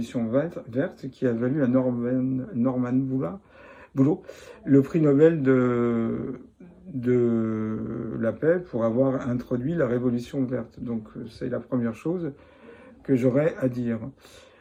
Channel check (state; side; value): identical; both; correlation 1.00